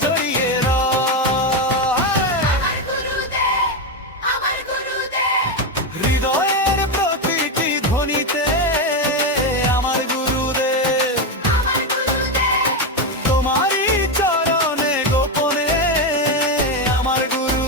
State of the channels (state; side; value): normal; both; correlation 0.10